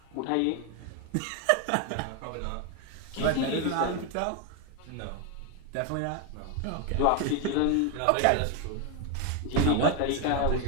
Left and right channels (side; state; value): both; different; correlation 0.01